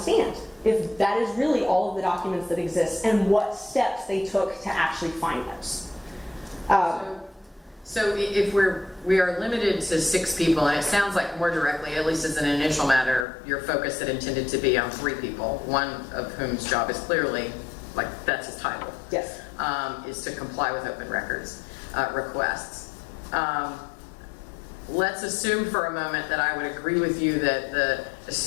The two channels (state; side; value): drops out; right; at 13.2 s